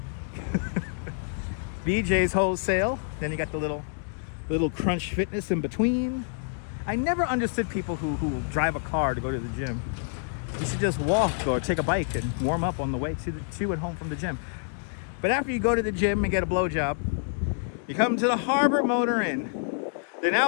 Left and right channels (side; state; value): right; silent; digital silence